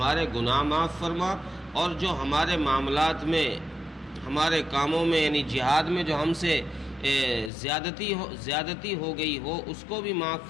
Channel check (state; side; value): drops out; right; at 7.5 s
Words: گناہ معاف فرما، اور جو ہمارے معاملات میں، ہمارے کاموں میں، یعنی جہاد میں جو ہم سے زیادتی ہو گئی ہو اس کو بھی معاف